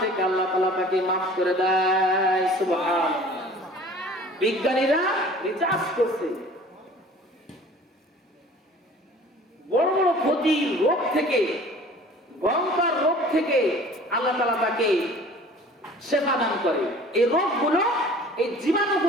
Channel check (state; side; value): normal; both; correlation 0.47